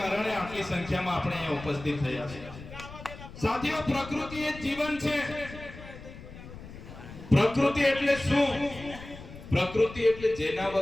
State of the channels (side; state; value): left; noise; rumble, 14 dB below the sound